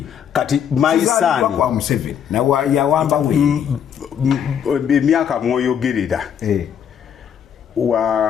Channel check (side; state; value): right; quieter; 8.5 dB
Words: kati maisani kwa Museveni na yawamba wendi emyaka mwoyogerera